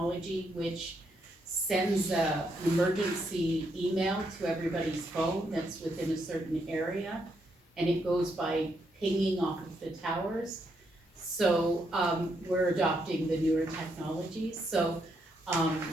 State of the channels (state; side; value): normal; both; correlation 0.77